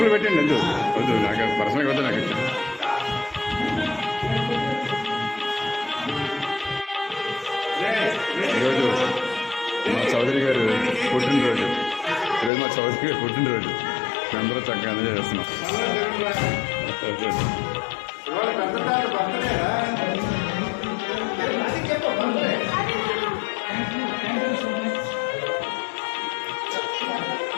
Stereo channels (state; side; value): drops out; right; at 12.5 s